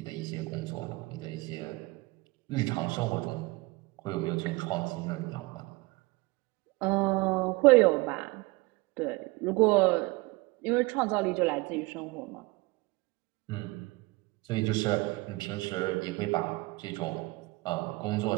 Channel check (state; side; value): quieter; left; 23.6 dB